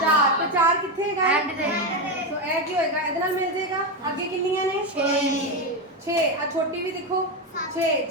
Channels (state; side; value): normal; both; correlation 0.11